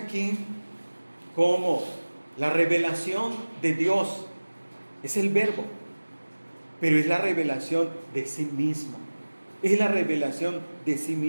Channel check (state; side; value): inverted; both; correlation -1.00